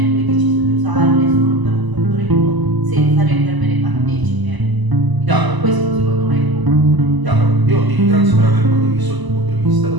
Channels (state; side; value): late; left; 1.0 ms